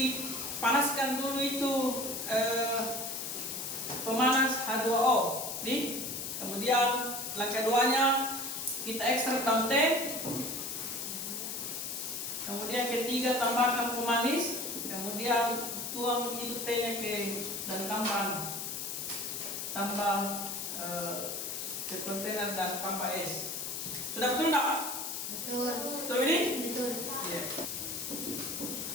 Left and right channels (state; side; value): noise; left; hiss, 4 dB below the sound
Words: dulu itu pemanas H2O. Nih. Kemudian langkah 2-nya kita ekstrak daun teh. Kemudian ketiga tambahkan pemanis. Kemudian tuang itu tehnya dan tambah ke kontainer dan tambah es. Sudah betul enggak? Betul. Betul ini? Betul. Iya.